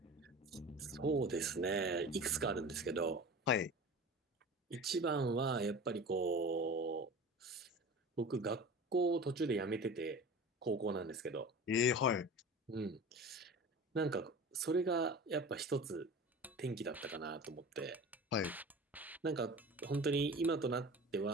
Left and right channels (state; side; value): normal; both; correlation 0.36